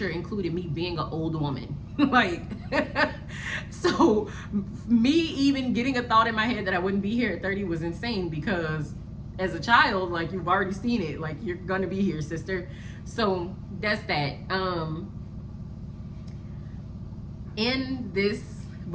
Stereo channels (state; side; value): identical; both; correlation 1.00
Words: included me being an old woman. Like, so me even getting a thought in my head that I wouldn't be here at 30 was insane, because as a child, like, you've already seen it, like, you're gonna be here, sister. So that's that. In this,